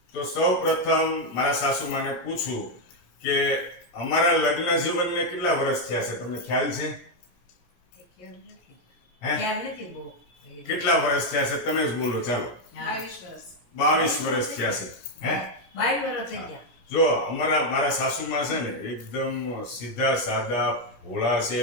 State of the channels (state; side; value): late; right; 17 ms